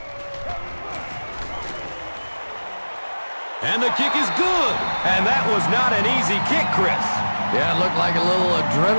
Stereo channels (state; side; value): inverted; both; correlation -1.00